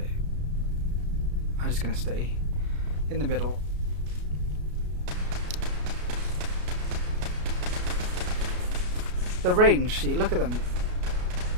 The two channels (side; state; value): left; late; 33 ms